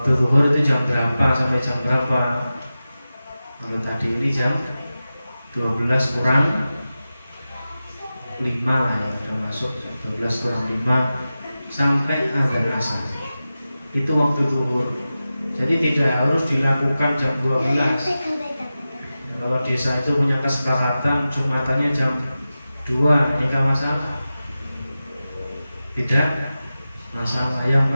zuhur itu jam berapa sampai jam berapa? Kalau tadi ini jam 12 kurang 5 lah ya, udah masuk jam 12 kurang 5 sampai azan asar. Itu waktu zuhur. Jadi tidak harus dilakukan jam 12. Kalau desa itu punya kesepakatan Jumatannya jam 2, ini kan masalah. Tidak masalah. Yang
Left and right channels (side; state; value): both; inverted; correlation -0.94